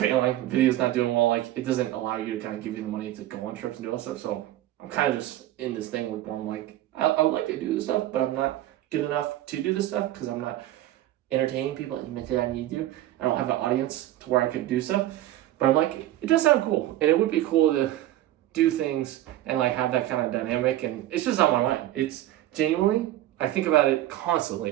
videos not doing well, like it doesn't allow you to kind of give you the money to go on trips and do all that stuff. So I'm kind of just in this thing where I'm like, I would like to do this stuff, but I'm not good enough to do this stuff because I'm not entertaining people and mentally I need to. I don't have an audience to where I could do stuff. But I'm like, it does sound cool. And it would be cool to do things and like have that kind of dynamic. And it's just on my mind. It's genuinely, I think about it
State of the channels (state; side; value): quieter; left; 14.2 dB